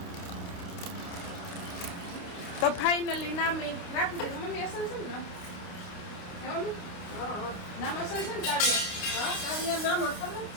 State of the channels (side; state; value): right; late; 29 ms